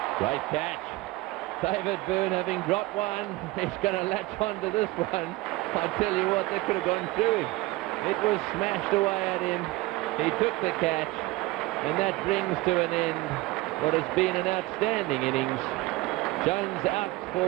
Great catch. David Byrne, having dropped one, he's going to latch on to this one. I tell you what, that could have gone through him. It was smashed away at him. He took the catch, and that brings to an end what has been an outstanding innings. Jones out for,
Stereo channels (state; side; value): quieter; left; 20.1 dB